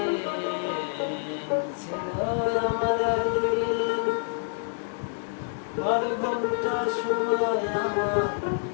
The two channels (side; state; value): right; silent; 60 dB below the other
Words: ছিল আমার একদিন, 12 ঘন্টা সময় আমার